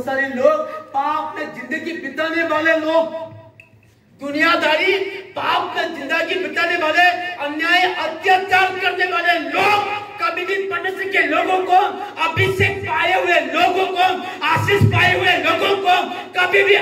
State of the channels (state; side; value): identical; both; correlation 1.00